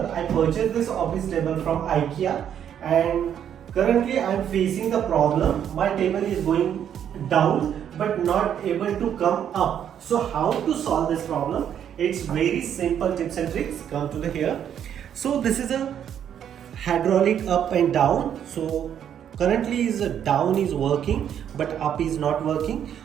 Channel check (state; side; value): quieter; left; 9.3 dB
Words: I purchased this office table from IKEA and currently I am facing the problem. My table is going down but not able to come up. So how to solve this problem? It's very simple tips and tricks. Come to the here. So this is a hydraulic up and down. So currently is down is working but up is not working.